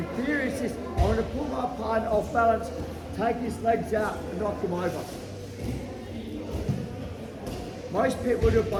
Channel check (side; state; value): both; identical; correlation 1.00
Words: theory is this, I want to pull my partner off balance, take his legs out and knock him over. Most people do it